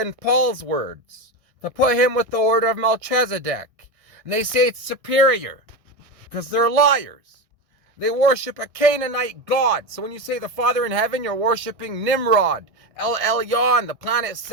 Paul's words. To put him with the order of Melchizedek. And they say it's superior because they're liars. They worship a Canaanite god. So when you say the Father in heaven, you're worshiping Nimrod, El Elyon, the planet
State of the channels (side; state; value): left; late; 1.6 ms